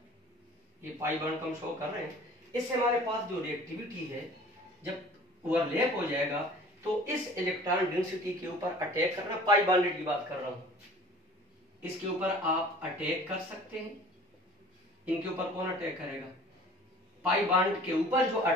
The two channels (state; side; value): normal; both; correlation 0.47